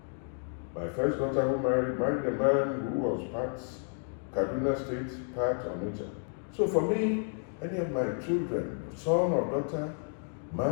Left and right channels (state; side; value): silent; right; 57 dB below the other